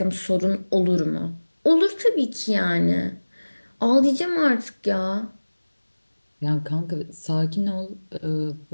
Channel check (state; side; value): inverted; both; correlation -1.00